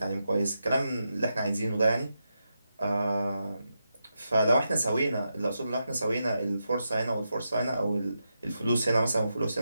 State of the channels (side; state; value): both; inverted; correlation -0.87